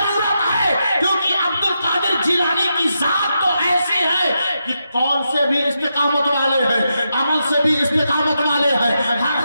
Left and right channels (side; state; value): both; inverted; correlation -0.85